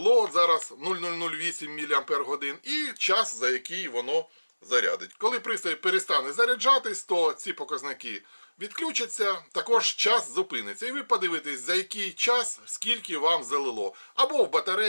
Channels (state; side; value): inverted; both; correlation -1.00